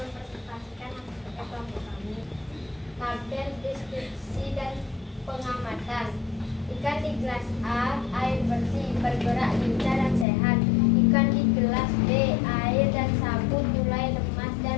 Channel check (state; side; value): drops out; right; at 10.2 s